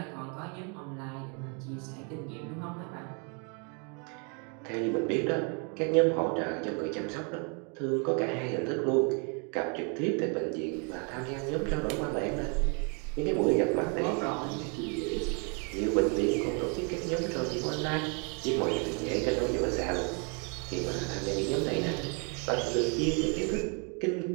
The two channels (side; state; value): left; quieter; 36.4 dB